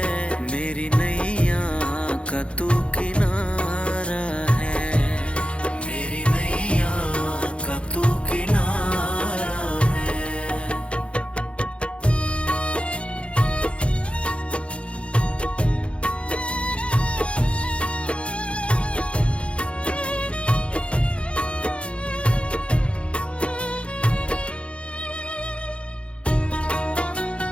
मेरी नैया का तू किनारा है, मेरी नैया का तू किनारा है।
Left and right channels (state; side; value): late; right; 0.059 ms